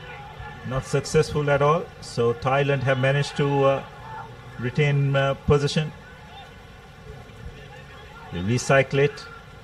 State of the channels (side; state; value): both; identical; correlation 1.00